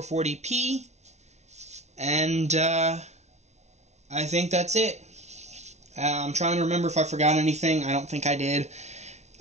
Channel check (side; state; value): left; late; 0.32 ms